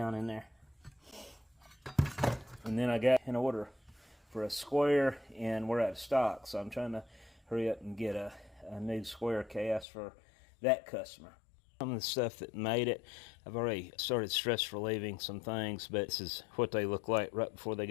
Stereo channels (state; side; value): drops out; right; at 9.9 s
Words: in there. And then I got an order for a square, and we're out of stock, so I'm trying to hurry up and get a new square cast for that customer. Some of the stuff that made it, I've already started stress relieving some things, but this is what they look like right before they